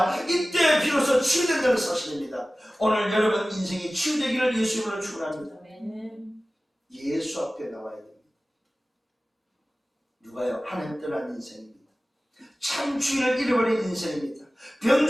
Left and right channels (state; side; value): normal; both; correlation 0.97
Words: 이때 비로소 치유된다는 사실입니다. 오늘 여러분 인생이 치유되기를 예수 이름으로 축원합니다. 예수 앞에 나와야 됩니다. 누가요? 하나님 떠난 인생입니다. 참 주인을 잃어버린 인생입니다.